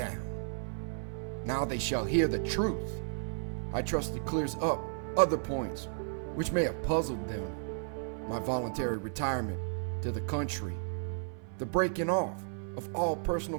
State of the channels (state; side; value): silent; left; 55 dB below the other